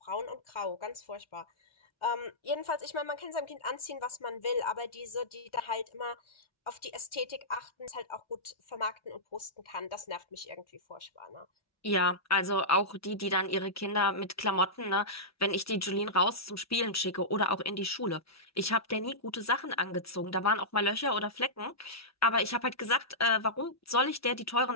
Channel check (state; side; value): normal; both; correlation -0.14